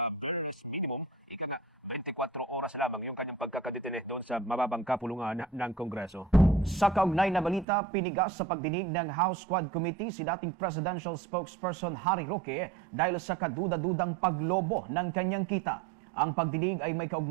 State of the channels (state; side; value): drops out; left; at 7.7 s